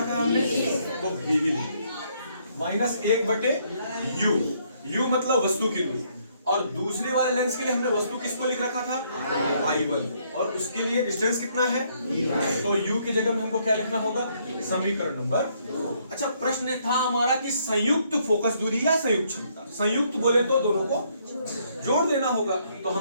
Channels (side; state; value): both; inverted; correlation -0.70